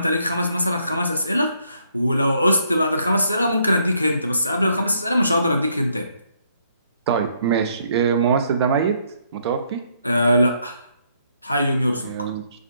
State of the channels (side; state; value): both; inverted; correlation -0.71